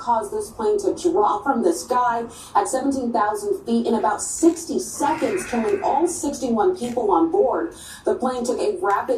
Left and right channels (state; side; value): identical; both; correlation 1.00